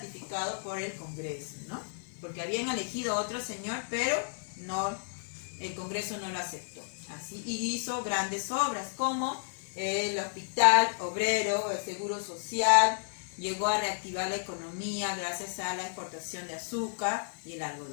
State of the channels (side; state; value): right; silent; 56 dB below the other